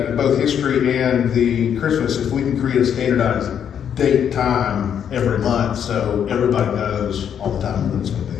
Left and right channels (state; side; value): quieter; right; 8.6 dB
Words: both history and the Christmas, if we can create a standardized date, time every month, so everybody knows all the time when it's gonna be.